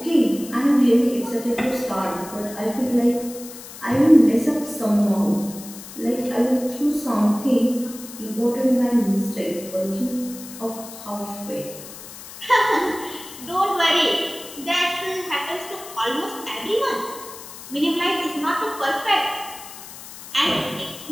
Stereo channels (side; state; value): left; noise; hiss, 14 dB below the sound